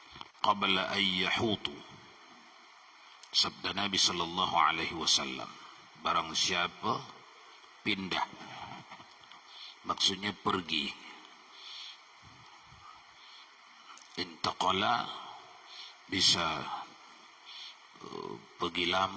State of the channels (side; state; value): both; identical; correlation 1.00